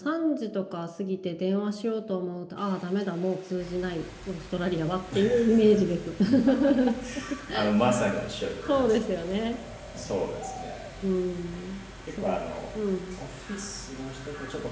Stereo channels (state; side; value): identical; both; correlation 1.00